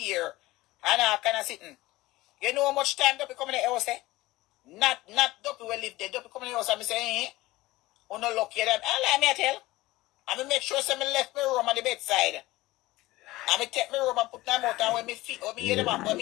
ear. And I kind of sitting. You know how much time Duppy come in the house, eh? Not Duppy will live there. Duppy come in the house and me say, oh no lucky them. And let me tell. And me make sure some me left my room on the bedside. And me take me room and put them out, and when me feet, when me hear them, when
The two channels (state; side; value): quieter; right; 18.7 dB